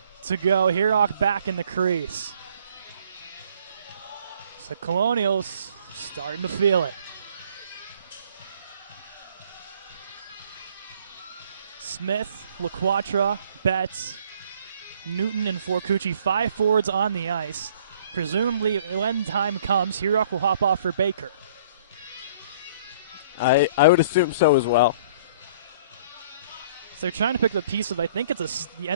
to go. Herock back in the crease. So Colonials starting to feel it. Smith, LaQuatra, Betts, Newton, and Forcucci, 5 forwards on the ice. Presumably, when time comes, Herock will hop off for Baker. I would assume so as well. So they're trying to pick the piece of, I think it's the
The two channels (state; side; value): inverted; both; correlation -0.57